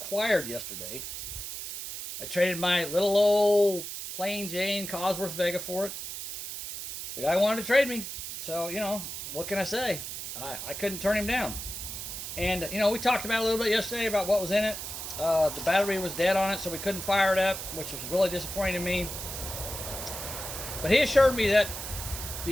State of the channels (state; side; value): noise; right; hiss, 7 dB below the sound